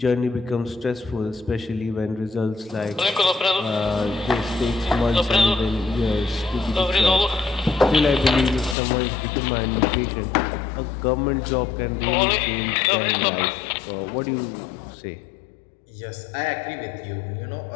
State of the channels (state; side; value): drops out; right; at 8.8 s